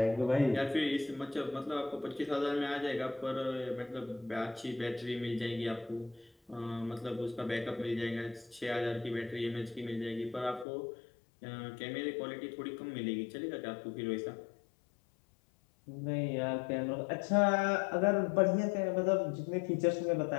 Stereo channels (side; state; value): right; drops out; at 10.7 s